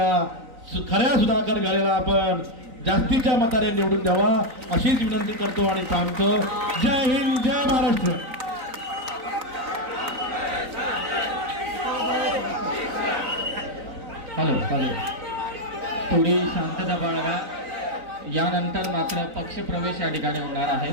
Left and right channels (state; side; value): late; left; 3.9 ms